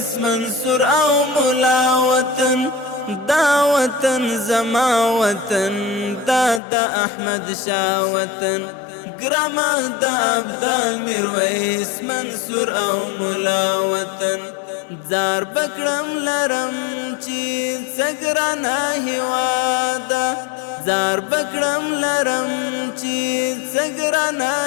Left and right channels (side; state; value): right; drops out; at 6.6 s